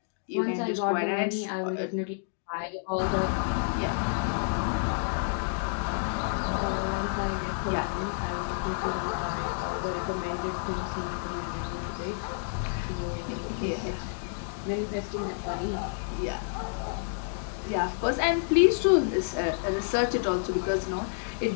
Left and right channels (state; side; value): silent; right; digital silence